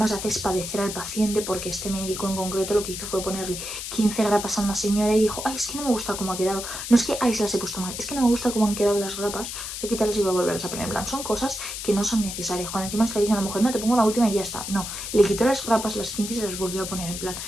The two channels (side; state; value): left; noise; hiss, 7 dB below the sound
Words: haces padecer al paciente porque este médico en concreto lo que hizo fue ponerle 15 grapas a una señora y dijo, ay, es que no me gusta cómo ha quedado, no es que, ay, se las he puesto mal, es que no me gusta cómo han quedado las grapas, voy a quitarlas y voy a volverlas a poner. En plan, son cosas que no son necesarias. Cuando encima está diciendo a la mujer, no, te pongo la última y ya está, no, le quitó las grapas, las 15 y se las volvió a poner, en plan,